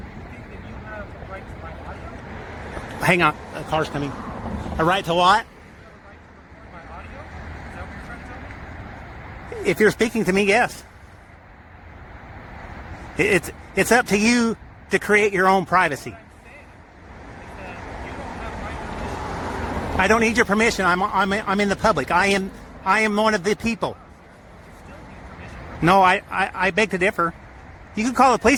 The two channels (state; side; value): identical; both; correlation 1.00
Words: think that you have a right to my audio? Hang on, a car's coming. A right to what? You have a right to record my audio? Is that what you're trying to tell me? If you're speaking to me, yes. It's up to you to create your own privacy. What I'm saying is that you don't have my permission. I don't need your permission. I'm in the public. I am one of the people. You still need permission. No, I beg to differ. You can call the